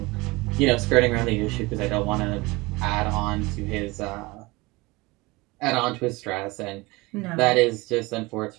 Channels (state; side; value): quieter; left; 23.0 dB